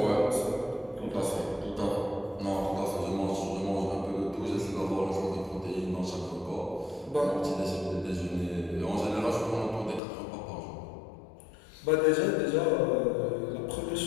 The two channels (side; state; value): right; drops out; at 10.0 s